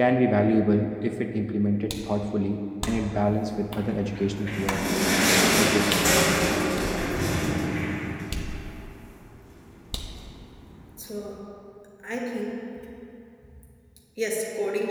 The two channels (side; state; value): both; identical; correlation 1.00